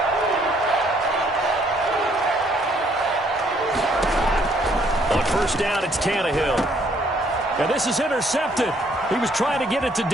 On first down, it's Tannehill. And this is intercepted. He was trying to get it to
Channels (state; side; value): normal; both; correlation 0.66